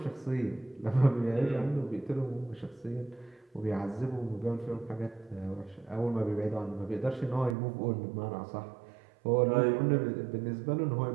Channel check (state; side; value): drops out; left; at 7.6 s